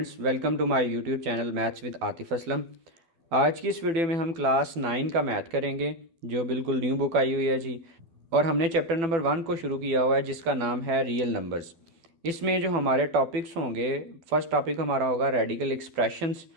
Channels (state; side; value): late; left; 12 ms